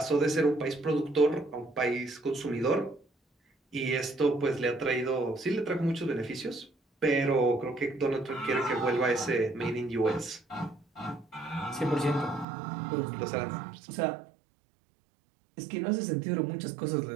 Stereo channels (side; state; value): left; drops out; at 12.5 s